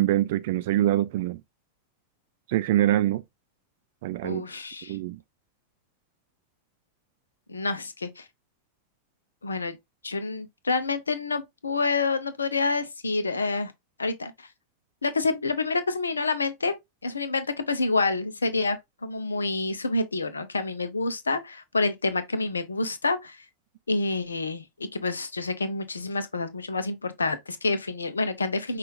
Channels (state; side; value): inverted; both; correlation -0.66